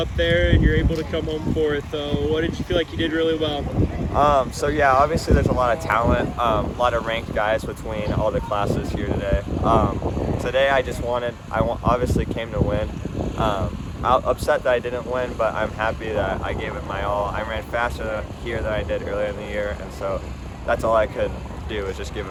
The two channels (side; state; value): both; identical; correlation 1.00